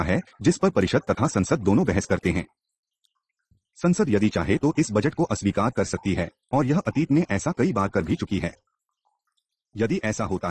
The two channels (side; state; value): both; identical; correlation 1.00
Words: है, जिस पर परिषद तथा संसद दोनों बहस करते हैं। संसद यदि चाहे तो इस बजट को अस्वीकार कर सकती है और यह अतीत में ऐसा कई बार कर भी चुकी है। यदि ऐसा होता